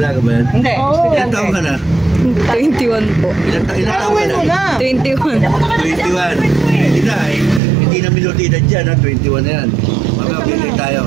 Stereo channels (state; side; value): drops out; left; at 7.6 s